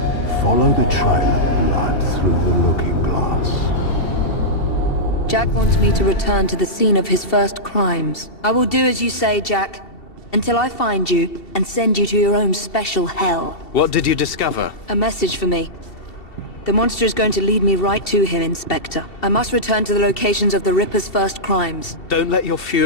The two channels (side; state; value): right; late; 2.7 ms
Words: Follow the trail of blood through the looking glass. Jack wants me to return to the scene of his first crimes. I will do as you say, Jack, until I find you and send you to your own special hell. What did you discover? A message for me. The monster is going to lead me right to him, Inspector. I must return to the locations of the Ripper's first crimes. Don't let your